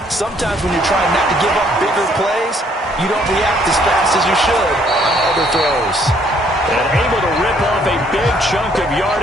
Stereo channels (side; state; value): both; normal; correlation 0.65